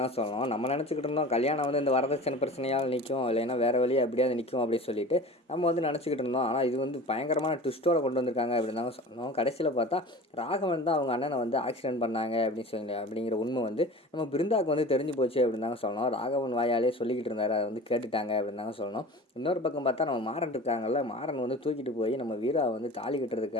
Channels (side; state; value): both; normal; correlation 0.38